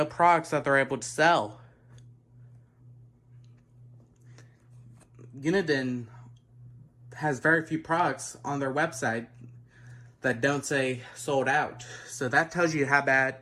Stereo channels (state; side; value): identical; both; correlation 1.00